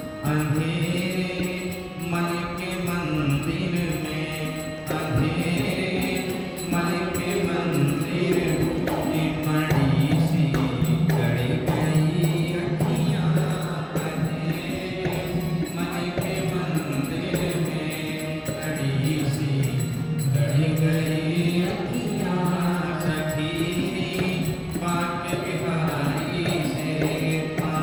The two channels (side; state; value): both; identical; correlation 1.00